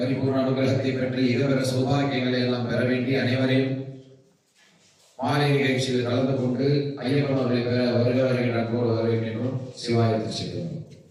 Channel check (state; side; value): identical; both; correlation 1.00